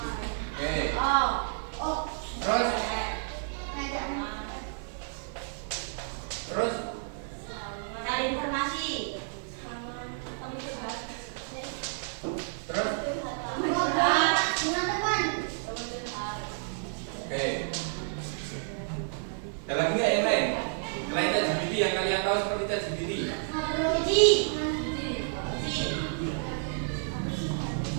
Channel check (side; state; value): left; silent; digital silence